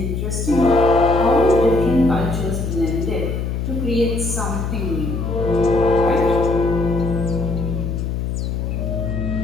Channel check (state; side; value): noise; left; hum, 2 dB below the sound